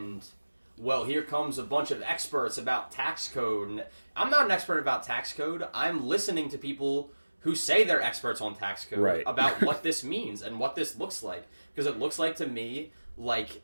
well, here comes a bunch of experts about tax code. And I'm not an expert about tax code. I'm listening to people who say they're experts on tax code about what this means and what this looks like. Because it looks like to me like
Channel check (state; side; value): inverted; both; correlation -1.00